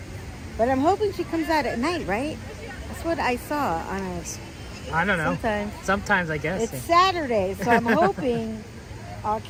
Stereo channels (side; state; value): both; identical; correlation 1.00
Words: but I'm hoping she comes out at night, right? That's what I saw on a. I don't know. Sometimes I guess. it's Saturday, so I'm hoping I'll